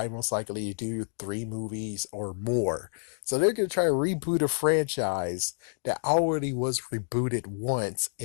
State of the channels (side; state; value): right; silent; digital silence